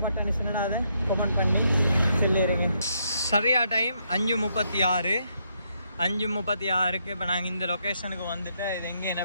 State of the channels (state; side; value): inverted; both; correlation -0.76